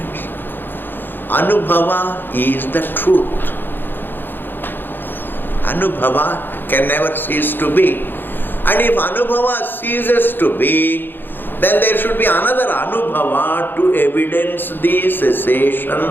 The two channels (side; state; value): right; late; 0.097 ms